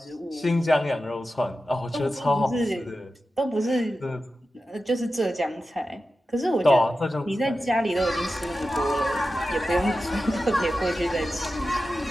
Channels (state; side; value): normal; both; correlation 0.92